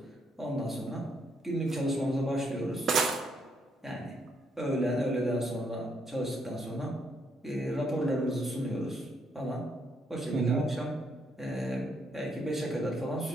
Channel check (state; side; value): normal; both; correlation 0.74